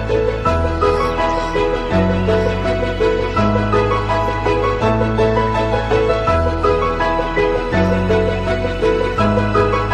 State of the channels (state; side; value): identical; both; correlation 1.00